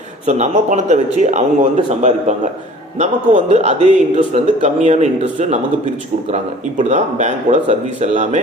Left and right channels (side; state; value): both; normal; correlation 0.47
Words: ஸோ நம்ம பணத்தை வச்சு அவங்க வந்து சம்பாதிப்பாங்க, நமக்கு வந்து அதே இன்ட்ரெஸ்ட் வந்து கம்மியான இன்ட்ரெஸ்ட்டு நமக்கு பிரித்து கொடுக்குறாங்க. இப்படி தான் பேங்க்கோட சர்வீஸ் எல்லாமே,